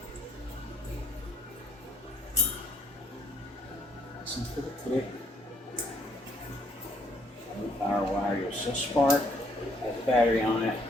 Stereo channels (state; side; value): normal; both; correlation 0.68